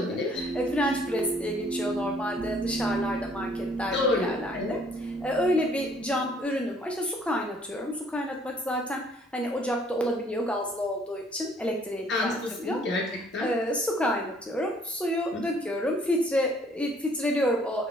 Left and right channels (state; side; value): normal; both; correlation 0.61